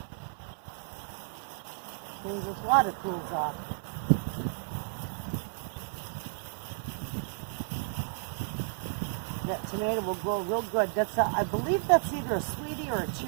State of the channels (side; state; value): left; silent; 56 dB below the other